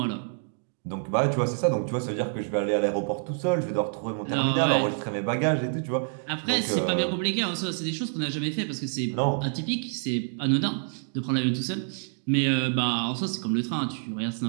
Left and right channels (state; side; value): silent; left; 60 dB below the other